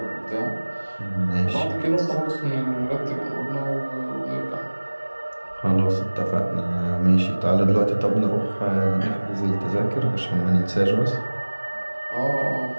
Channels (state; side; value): inverted; both; correlation -1.00